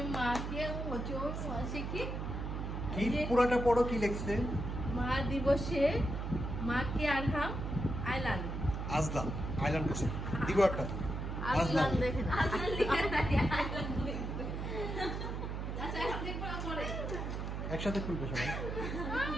মাকে ওজন শিখি কি পুরাটা পড়ো, কি লিখছে? মা দিবসে মাকে আরহাম আইলান আজলাম আইল্যান্ড করছে, দিব একটা আজলান দেখেন আজলান লিখে নাই আইলান লিখছে। আচ্ছা এখন দেখব পরে। একসাথে খুলবে সবাই।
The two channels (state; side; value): noise; right; hum, 4 dB below the sound